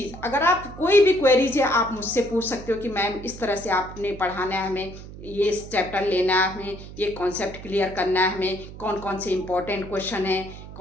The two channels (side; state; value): right; noise; hum, 14 dB below the sound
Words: अगर आप कोई भी क्वेरीज है आप मुझसे पूछ सकते हो कि मैम इस तरह से आपने पढ़ाना है, हमें ये चैप्टर लेना है, हमें ये कॉन्सेप्ट क्लियर करना है, हमें कौन कौन से इम्पोर्टेंट क्वेश्चन हैं,